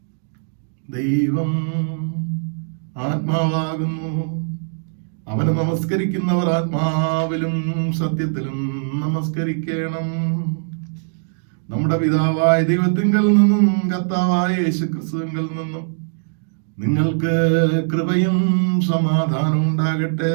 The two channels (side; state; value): left; silent; digital silence